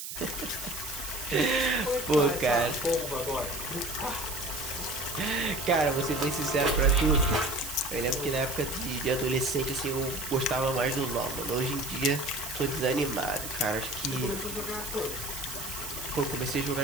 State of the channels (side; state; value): right; noise; hiss, 8 dB below the sound